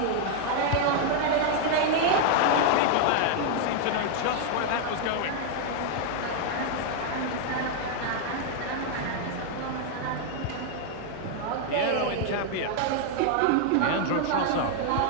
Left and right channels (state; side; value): different; both; correlation 0.00